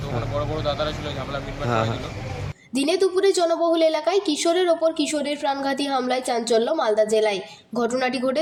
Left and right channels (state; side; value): identical; both; correlation 1.00